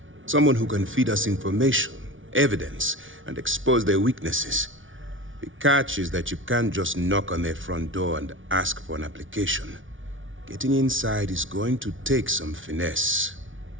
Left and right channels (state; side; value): late; left; 0.57 ms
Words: Someone who can feed us information, evidence, and expose their weaknesses. The catch is that you can't just knock on their front door and ask for an application. Getting inside is going to take some finesse.